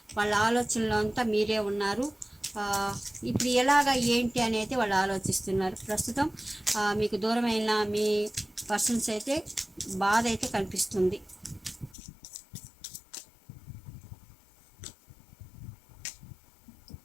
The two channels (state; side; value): drops out; right; at 12.0 s